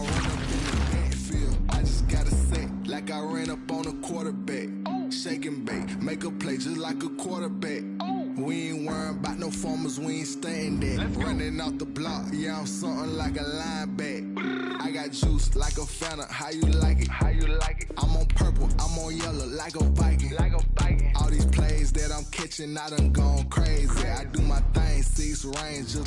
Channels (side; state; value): both; identical; correlation 1.00